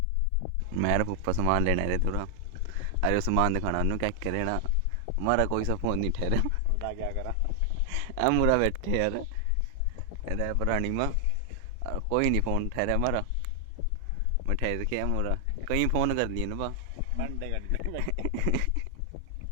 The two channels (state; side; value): different; both; correlation 0.00